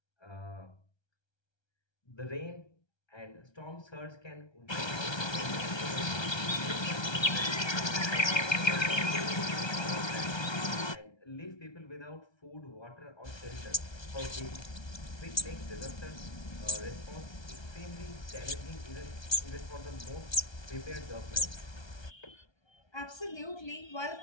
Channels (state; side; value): late; right; 1.3 ms